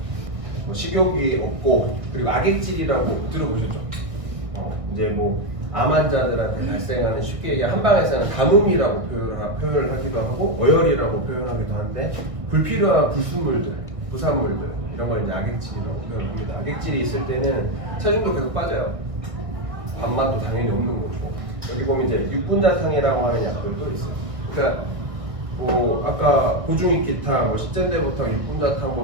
식욕이 없고 그리고 악액질이라고 들어보셨죠? 이제 암 환자들한테 발생하는 쉽게 얘기 한방에서는 가뭄이라고 표현을 하기도 하고 어혈이라고 표현하기도 하는데 불필요한 불순물들, 부산물들 이런 걸 이제 악액질이라고 표현합니다. 악액질이 있을 때는 체중도 계속 빠져요. 밥맛도 당연히 없는 거고 여기 보면 이제 육군자탕이라고 하는 약들도 있어요. 그러니까 아까 고중익기탕, 십전대보탕,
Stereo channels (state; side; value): late; left; 1.6 ms